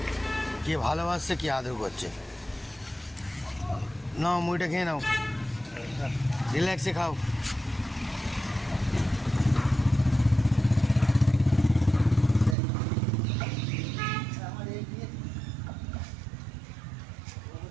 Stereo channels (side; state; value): left; drops out; at 12.6 s